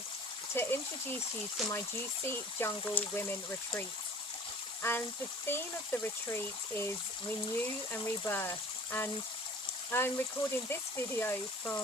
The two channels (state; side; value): normal; both; correlation 0.46